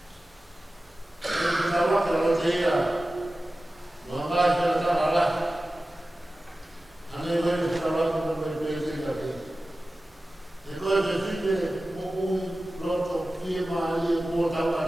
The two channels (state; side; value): normal; both; correlation 0.95